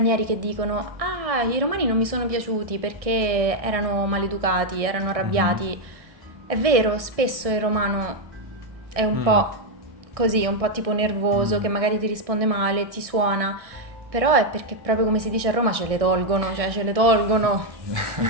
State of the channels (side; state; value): left; late; 1.6 ms